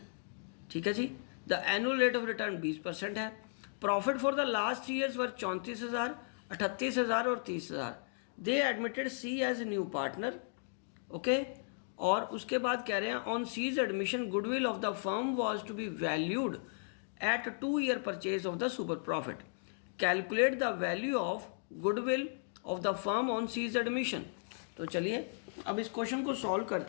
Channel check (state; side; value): silent; right; digital silence